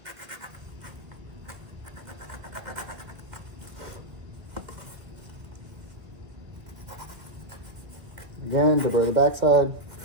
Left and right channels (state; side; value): late; left; 2.1 ms